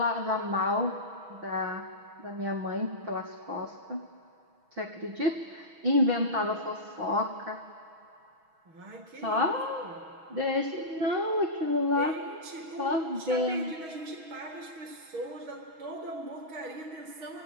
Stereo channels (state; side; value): late; left; 6.2 ms